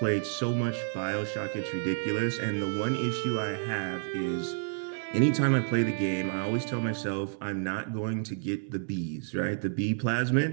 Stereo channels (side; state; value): left; silent; digital silence